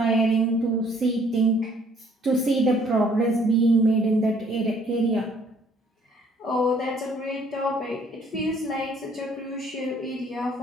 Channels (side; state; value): both; normal; correlation 0.61